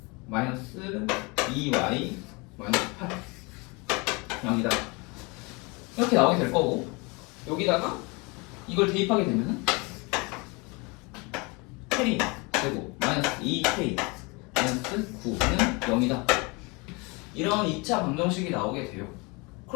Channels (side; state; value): right; quieter; 28.1 dB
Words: 마이너스 2Y 마이너스 8 0이다. 이렇게 나오게 될 거고 여기다가 이걸 대입하게 되면은 K 제곱 마이너스 2K 마이너스 9는 0이다 이런 2차 방정식이 나오게 돼요.